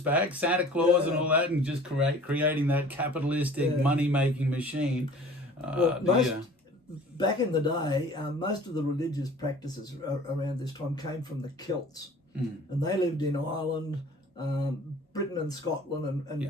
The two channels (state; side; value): normal; both; correlation 0.46